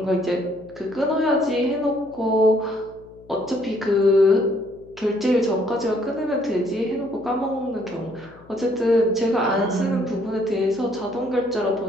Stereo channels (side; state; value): left; noise; hum, 24 dB below the sound